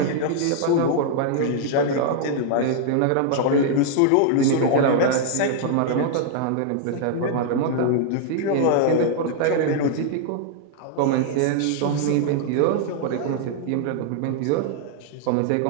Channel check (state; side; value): different; both; correlation -0.01